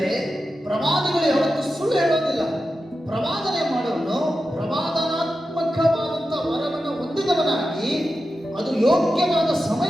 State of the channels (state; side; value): normal; both; correlation 0.91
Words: ಪ್ರವಾದಿಗಳು ಯಾವತ್ತೂ ಸುಳ್ಳು ಹೇಳೋದಿಲ್ಲ. ಪ್ರವಾದನೆ ಮಾಡೋನು ಪ್ರವಾದನಾತ್ಮಕವಾದಂಥ ವರವನ್ನು ಹೊಂದಿದವನಾಗಿ ಅದು ಯೋಗ್ಯವಾದ